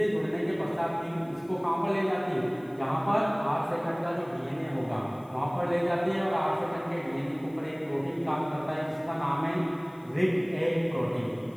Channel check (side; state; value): left; noise; hiss, 29 dB below the sound